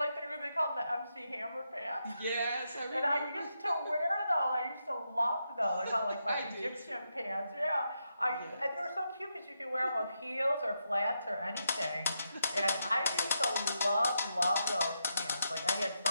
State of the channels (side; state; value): both; inverted; correlation -0.83